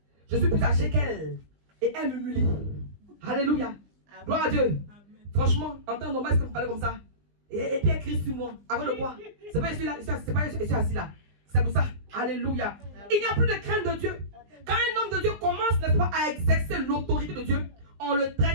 Je suis plus âgé qu'elle. Et elle m'humilie. Alléluia. Gloire à Dieu. Franchement, en temps normal, est-ce que vous parlez comme ça? Et puis écrit sur moi. Avant le quoi? C'est pas je suis là, c'est pas je suis assis là. C'est pour ça. Alléluia. Il n'y a plus de crainte de Dieu. Quand un homme de Dieu commence, n'est-ce pas, à exercer l'autorité de Dieu, on le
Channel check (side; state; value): left; late; 20 ms